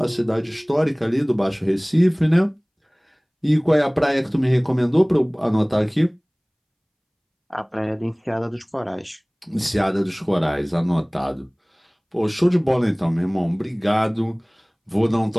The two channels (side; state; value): both; identical; correlation 1.00